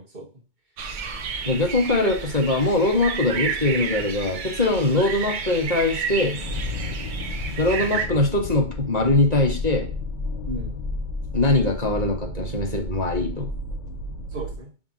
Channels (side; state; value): left; late; 2.2 ms